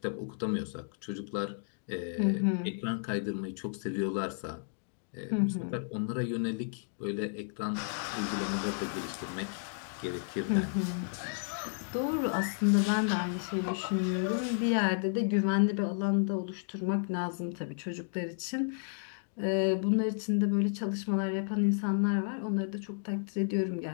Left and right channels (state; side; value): silent; right; digital silence